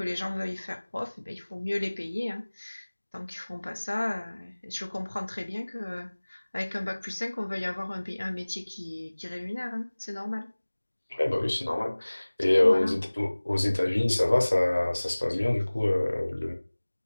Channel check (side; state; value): both; inverted; correlation -1.00